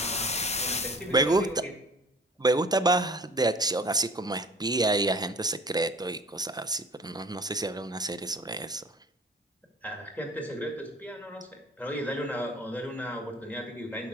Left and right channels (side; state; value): both; normal; correlation 0.47